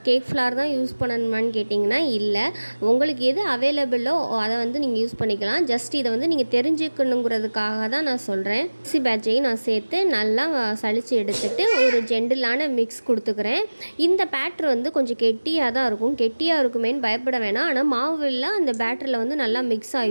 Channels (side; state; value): both; inverted; correlation -1.00